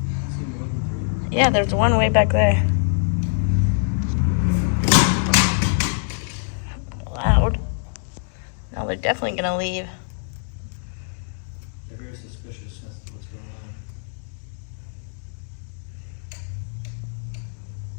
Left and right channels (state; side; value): silent; right; digital silence